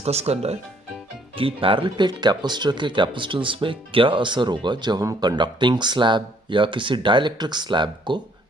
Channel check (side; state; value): both; normal; correlation 0.64